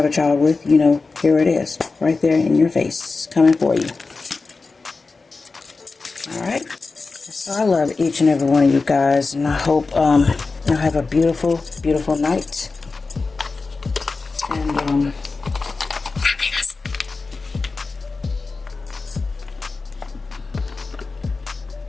a child with, you know, here it is, right there in your face, coming for you. Alright? So I love each and every one of you guys, and I hope you'll have a beautiful, beautiful night. And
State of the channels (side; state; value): right; quieter; 4.0 dB